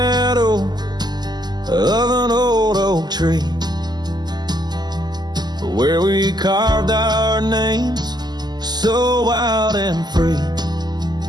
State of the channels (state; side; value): late; left; 0.20 ms